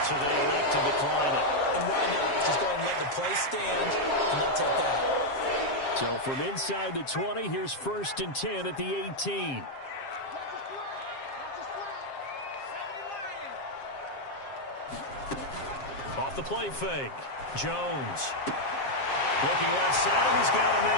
So they elect to decline it. And why not? Just go ahead and let the play stand, and they'll take that. So from inside the 20, here's 1st and 10 at the 18. Off the play fake. Jones. Looking left side, and he's got a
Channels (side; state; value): right; late; 7.4 ms